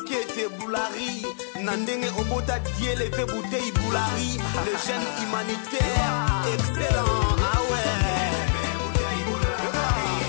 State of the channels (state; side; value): silent; right; 61 dB below the other